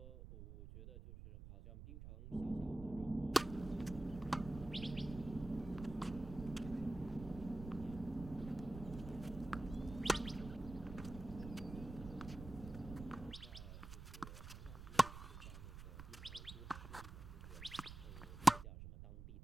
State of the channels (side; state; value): right; noise; rumble, 11 dB below the sound